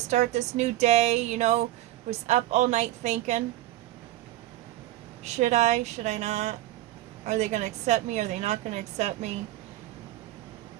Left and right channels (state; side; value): quieter; left; 15.1 dB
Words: start this new day, you know, was up all night thinking, should I not? Are they going to accept me? Are they not going to accept me?